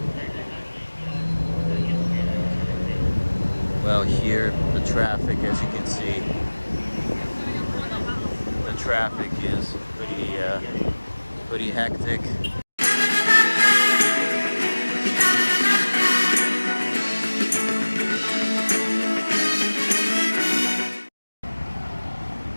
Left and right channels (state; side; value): inverted; both; correlation -1.00